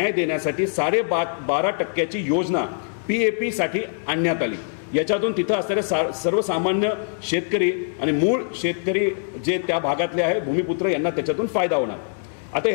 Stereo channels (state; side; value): silent; right; digital silence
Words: देण्यासाठी 12.5% योजना PAP साठी आणण्यात आली. याच्यातून तिथं असणारे सर्वसामान्य शेतकरी आणि मूळ शेतकरी जे त्या भागातले आहे भूमिपुत्र यांना त्याच्यातून फायदा होणार. आता